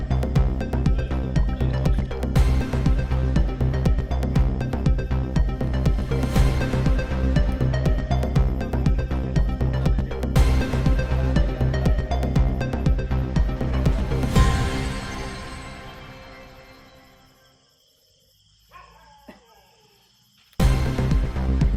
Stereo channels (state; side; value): identical; both; correlation 1.00